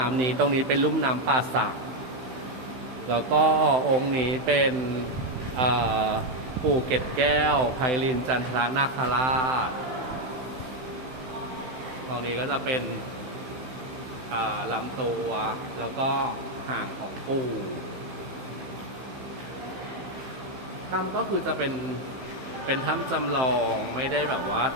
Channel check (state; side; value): late; left; 16 ms